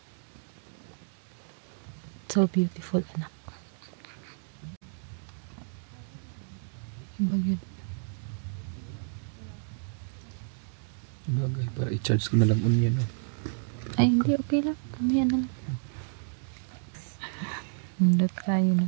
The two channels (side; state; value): left; silent; digital silence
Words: So beautiful, anak. Yung bagyo. Bagay, para i-charge ko na lang unya, no? Ay, hindi, okay lang. Mamaya na lang. Nandot tayo